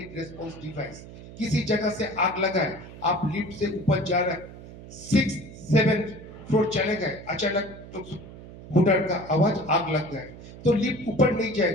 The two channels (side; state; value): right; noise; hum, 16 dB below the sound